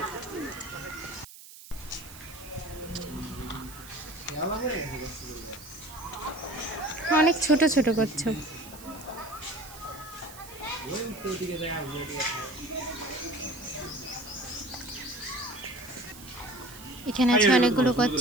অনেক ছোট ছোট কচ্ছপ। এখানে আছে অনেকগুলো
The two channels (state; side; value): noise; right; hiss, 17 dB below the sound